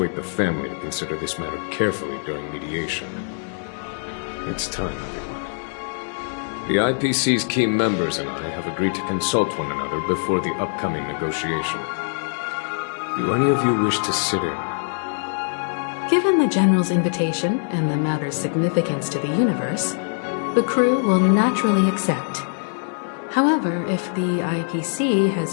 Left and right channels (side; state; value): right; silent; 55 dB below the other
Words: the family to consider this matter carefully during mediation. It's time, everyone. The IPC's key members and I have agreed to consult one another before the upcoming negotiation. Do any of you wish to sit in? Given the General's invitation and the matter's significance to the universe, the crew will naturally accept. However, if the IPC